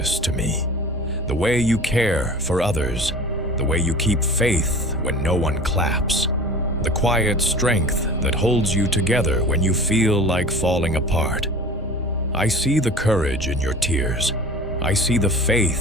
to me. The way you care for others, the way you keep faith when no one claps, the quiet strength that holds you together when you feel like falling apart. I see the courage in your tears. I see the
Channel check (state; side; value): normal; both; correlation 0.39